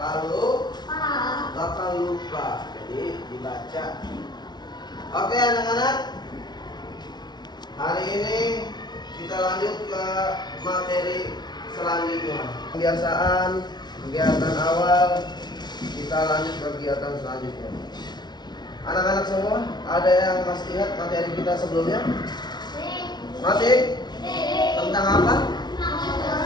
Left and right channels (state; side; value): late; right; 0.20 ms